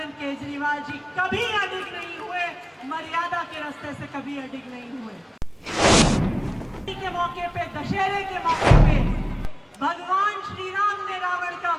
केजरीवाल जी कभी अडिग नहीं हुए, मर्यादा के रास्ते से कभी अडिग नहीं हुए। के मौके पे, दशहरे के मौके पे भगवान श्री राम ने रावण का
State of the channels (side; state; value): both; identical; correlation 1.00